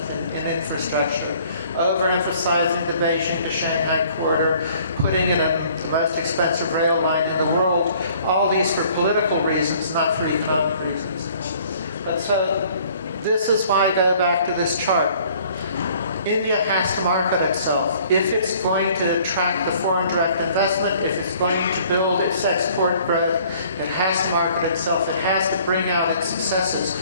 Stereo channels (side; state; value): both; inverted; correlation -0.56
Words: in infrastructure, overemphasizing the Beijing to Shanghai corridor, putting in the most expensive rail line in the world, all these for political reasons, not for economic reasons. But so, this is why I go back to this chart. India has to market itself. If it's going to attract the foreign direct investment, if it's going to build its export growth, it has to market itself. It has to bring out its successes.